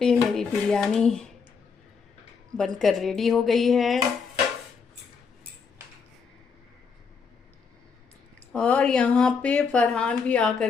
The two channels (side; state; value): right; quieter; 5.6 dB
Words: मेरी बिरयानी बनकर रेडी हो गई है और यहाँ पे फरहान भी